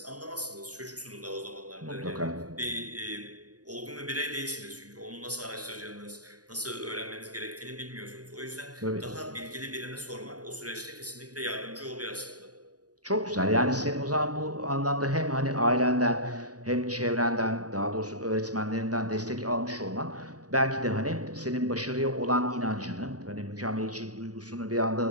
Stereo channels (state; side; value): late; left; 0.68 ms